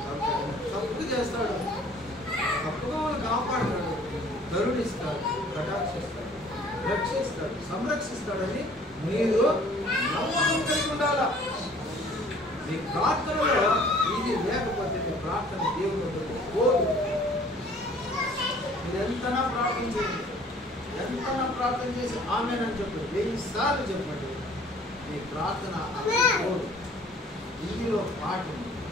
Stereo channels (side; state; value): both; normal; correlation 0.53